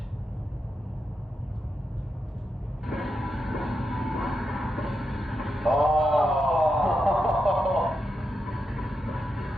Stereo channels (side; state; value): both; normal; correlation 0.86